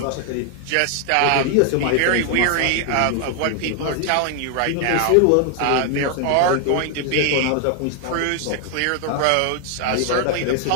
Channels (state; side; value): different; both; correlation 0.00